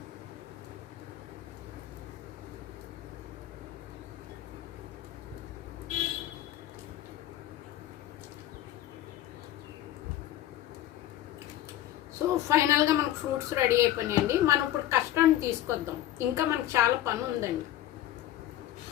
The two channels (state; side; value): quieter; right; 13.2 dB